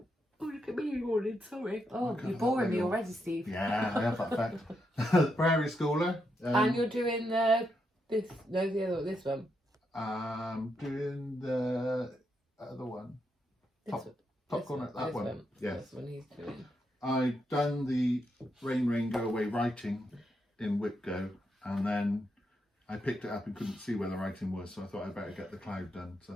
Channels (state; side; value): normal; both; correlation 0.81